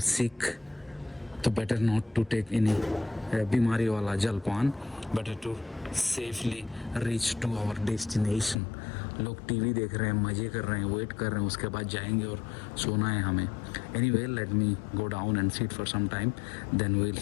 sick. तो better not to take any बीमारी वाला जलपान, better to safely reach to our destination. लोग TV देख रहे हैं, मज़े कर रहे हैं, वेट कर रहे हैं, उसके बाद जाएंगे और सोना है हमें. Anyway, let me go down and sit for some time, then we will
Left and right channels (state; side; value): drops out; right; at 8.6 s